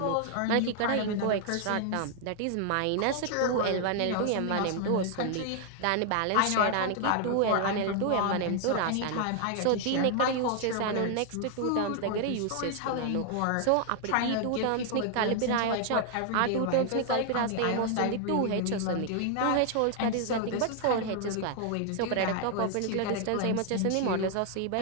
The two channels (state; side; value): different; both; correlation 0.00